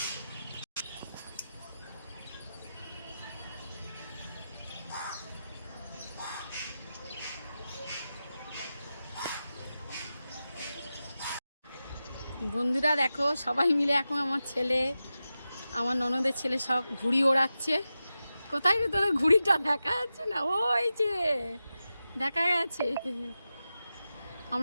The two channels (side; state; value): both; inverted; correlation -0.92